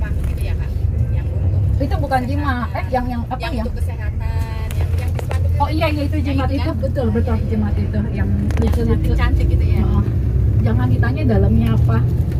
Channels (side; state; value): both; identical; correlation 1.00